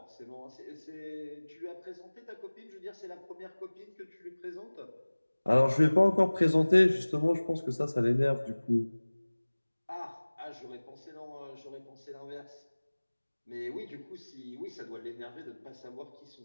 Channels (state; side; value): inverted; both; correlation -1.00